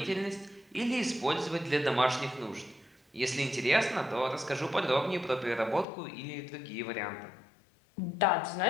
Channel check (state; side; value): drops out; right; at 5.9 s